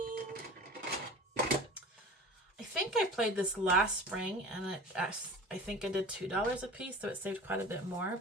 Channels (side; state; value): both; normal; correlation 0.39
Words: I think I played this last spring, and I think I did $2 a piece, so it saved quite a bit more.